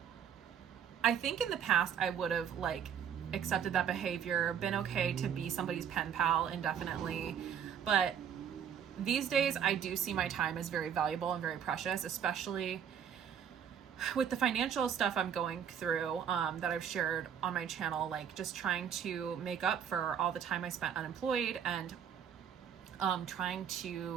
I think in the past I would have like accepted that behavior, been okay to be somebody's pen pal indefinitely, but these days I do see my time as very valuable and very precious, especially with the financial stuff I'm going through that I've shared on my channel, like just trying to make up for all the time I spent unemployed and trying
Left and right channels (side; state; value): left; quieter; 8.3 dB